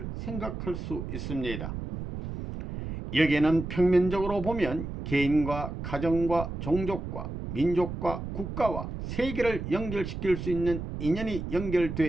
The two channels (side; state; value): right; noise; rumble, 7 dB below the sound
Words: 생각할 수 있습니다. 여기에는 평면적으로 보면 개인과 가정과 종족과 민족과 국가와 세계를 연결시킬 수 있는 인연이